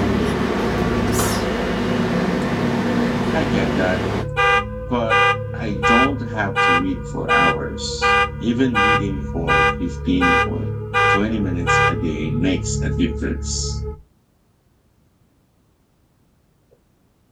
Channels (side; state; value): both; identical; correlation 1.00